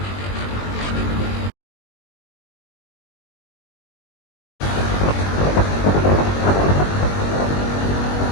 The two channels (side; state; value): right; late; 21 ms